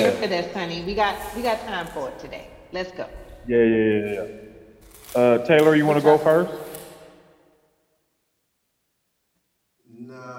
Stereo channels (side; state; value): both; identical; correlation 1.00